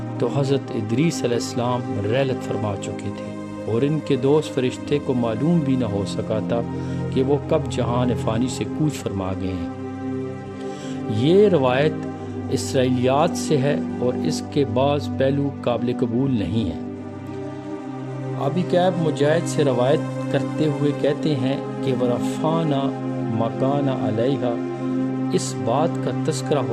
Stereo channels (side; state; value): both; identical; correlation 1.00